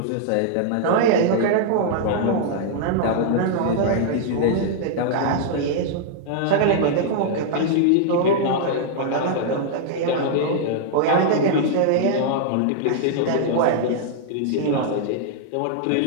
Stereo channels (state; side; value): different; both; correlation -0.01